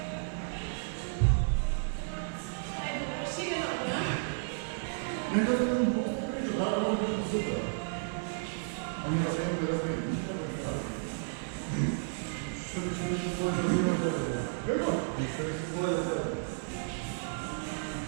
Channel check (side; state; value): left; silent; 56 dB below the other